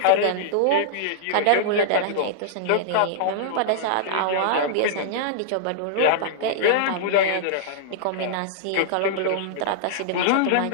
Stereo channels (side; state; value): both; different; correlation -0.02